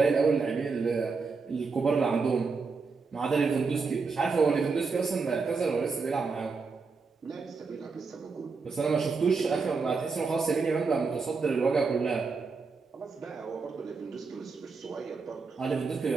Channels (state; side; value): quieter; left; 4.6 dB